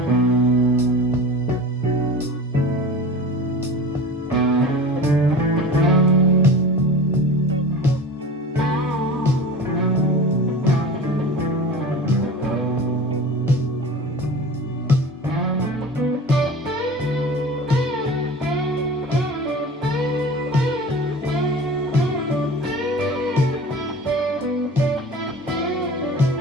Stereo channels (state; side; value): normal; both; correlation 0.36